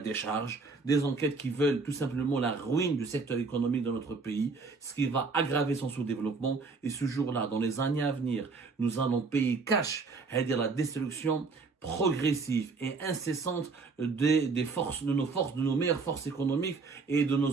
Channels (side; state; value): left; quieter; 4.3 dB